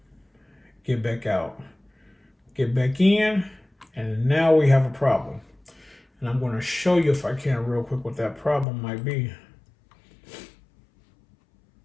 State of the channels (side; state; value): right; drops out; at 8.7 s